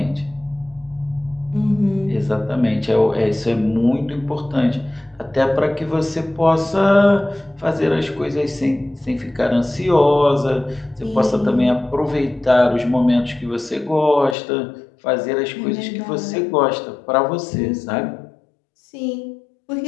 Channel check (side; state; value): right; drops out; at 14.4 s